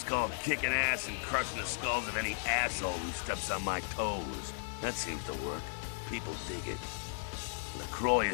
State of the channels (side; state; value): right; silent; digital silence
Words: called kicking ass and crushing the skulls of any asshole who steps on my toes. That seems to work. People dig it. LaCroix